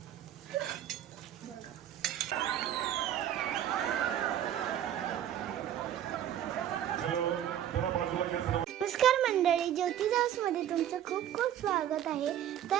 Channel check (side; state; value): left; quieter; 10.9 dB